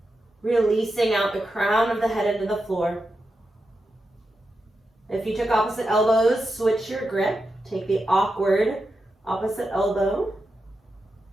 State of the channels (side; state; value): both; normal; correlation 0.88